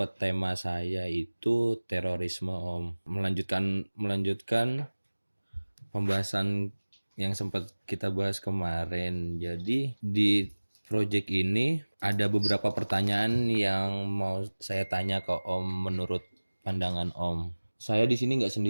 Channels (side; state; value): both; inverted; correlation -1.00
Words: tema saya itu terorisme Om. Melanjutkan pembahasan yang sempat kita bahas kemarin. Jadi di project ini ada beberapa pertanyaan yang mau saya tanya ke Om menurut pandangan Om. Saya di sini nggak